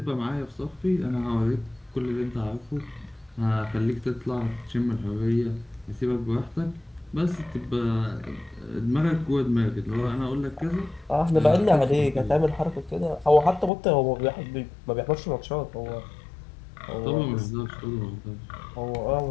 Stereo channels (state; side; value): drops out; right; at 13.7 s